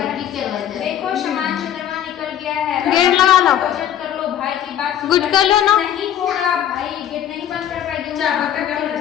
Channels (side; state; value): right; quieter; 10.5 dB